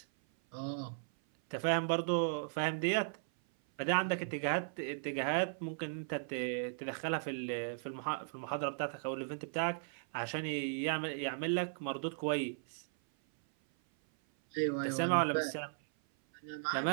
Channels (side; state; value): left; silent; 53 dB below the other